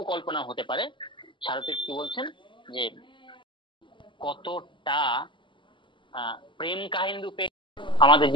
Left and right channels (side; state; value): right; late; 0.24 ms